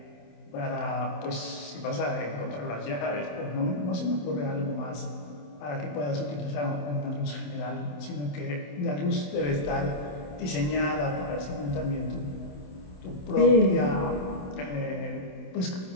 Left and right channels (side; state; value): right; late; 27 ms